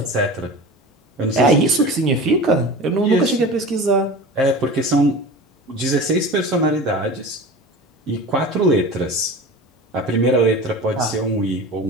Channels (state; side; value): normal; both; correlation 0.34